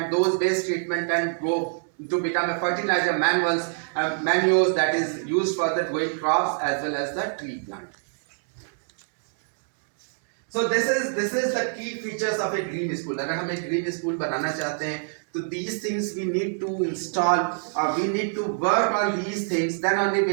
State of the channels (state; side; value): silent; left; digital silence